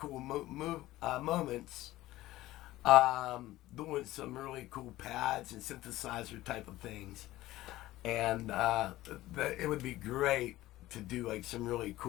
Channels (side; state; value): right; quieter; 16.5 dB